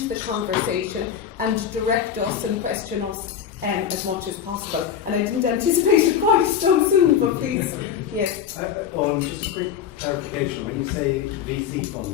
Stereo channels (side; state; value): right; quieter; 8.5 dB